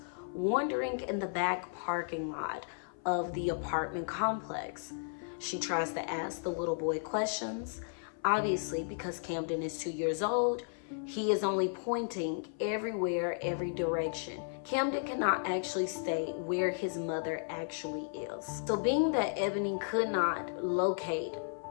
wandering in the back parking lot of the apartment complex. She tries to ask the little boy questions. Obviously, because Camden is 2 years old, he is only pointing everywhere, every direction. Camden cannot actually state where his mother actually is. So being that Ebony could not locate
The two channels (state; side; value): silent; right; 55 dB below the other